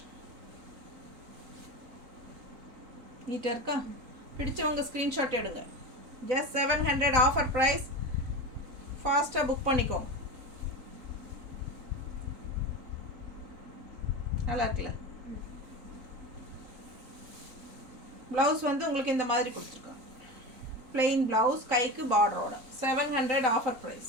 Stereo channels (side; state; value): left; late; 3.9 ms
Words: நீட்டாக இருக்கா? பிடிச்சவங்க ஸ்க்ரீன்ஷாட் எடுங்க. Just 700 offer price. ஃபாஸ்ட்டாக புக் பண்ணிக்கோங்க. நல்லா இருக்குல்ல? ப்ளவுஸ் வந்து உங்களுக்கு இந்த மாதிரி கொடுத்துருக்காங்க. பிளெயின் ப்ளவுஸ் கைக்கு பார்டரோட 700 offer